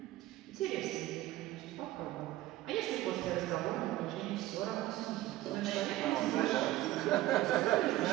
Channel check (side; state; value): left; quieter; 16.0 dB